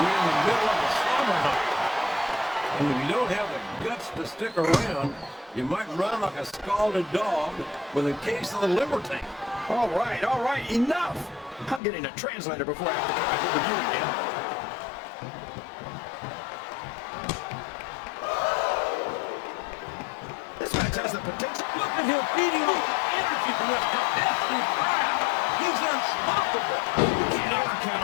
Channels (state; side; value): drops out; right; at 11.8 s